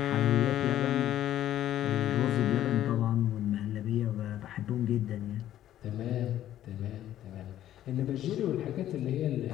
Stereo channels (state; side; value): quieter; right; 12.3 dB